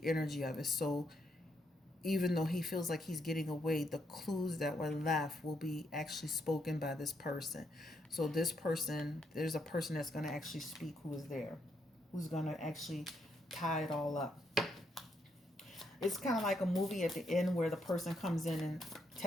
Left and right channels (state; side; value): normal; both; correlation 0.76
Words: energy of it. So even though he feels like he's getting away, the clues that were left will be actually spoken by this person. So this person, there's a person that's going to actually speak who is there, who's going to actually tie it all up. It's kind of like a movie at the end where the person comes in and